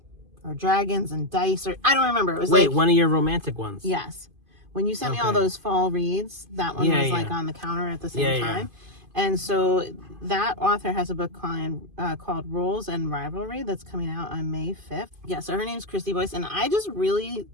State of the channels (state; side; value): late; left; 2.5 ms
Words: or Dragons and Dice, or I don't remember. It was Wait, one of your romantic ones. Yes. When you sent me all those fall reads, that one was like on the counter at the same time. And so that author has a book called Roles and Rivalry that's coming out on May 5th. Yeah, so her name's Christy Boyce, and I just really